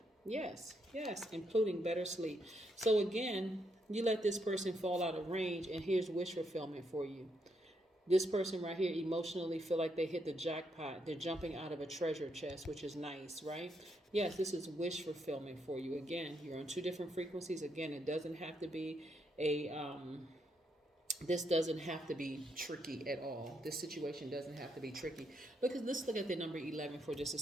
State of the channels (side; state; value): both; normal; correlation 0.77